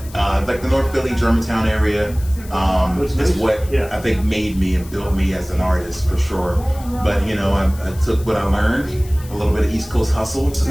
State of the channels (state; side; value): noise; left; hiss, 20 dB below the sound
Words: like the North Philly, Germantown area is what I think made me and built me as an artist for sure. But you know, I took what I learned, a little bit of East Coast hustle to